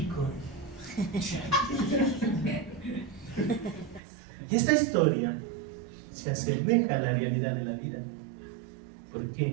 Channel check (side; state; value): left; drops out; at 4.0 s